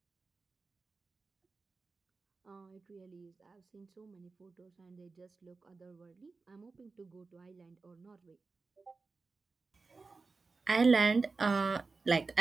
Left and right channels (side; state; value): left; quieter; 4.1 dB